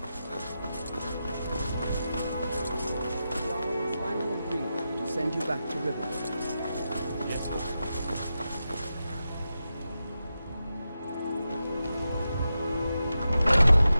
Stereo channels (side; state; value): both; inverted; correlation -0.90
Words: Send you back to Riverwood.